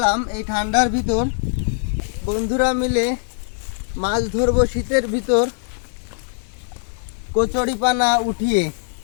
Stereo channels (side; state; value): right; silent; digital silence